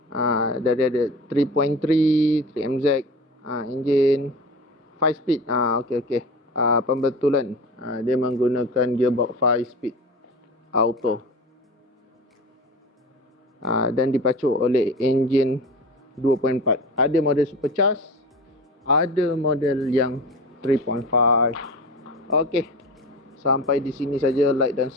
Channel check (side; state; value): both; normal; correlation 0.32